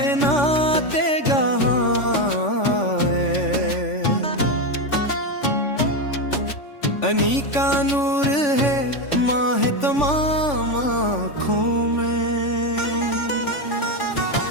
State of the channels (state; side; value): late; right; 3.5 ms